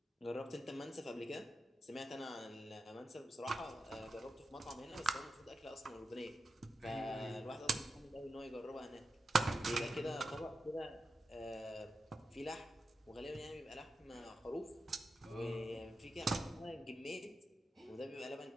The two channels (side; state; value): both; normal; correlation 0.89